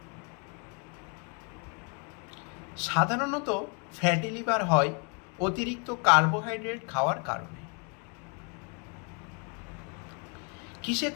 সাধারণত ফ্যাটি লিভার হয় অতিরিক্ত কার্বোহাইড্রেট খাওয়ার কারণে। কিসে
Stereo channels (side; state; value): right; quieter; 34.8 dB